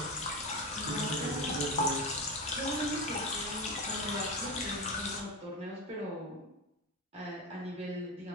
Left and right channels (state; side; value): normal; both; correlation 0.19